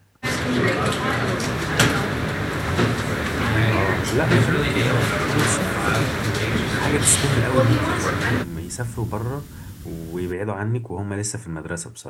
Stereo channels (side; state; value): both; identical; correlation 1.00